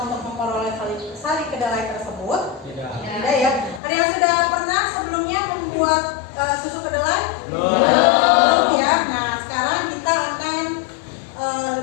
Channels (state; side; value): drops out; right; at 3.8 s